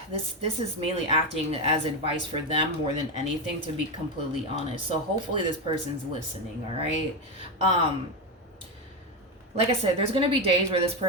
This is mainly acting as advice for them more than anything, to be completely honest. So hopefully this person's listening, all right? Like I said, there's going to be days where this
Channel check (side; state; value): both; normal; correlation 0.11